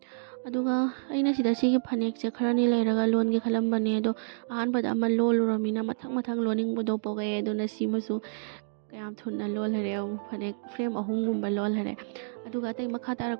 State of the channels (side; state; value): left; silent; digital silence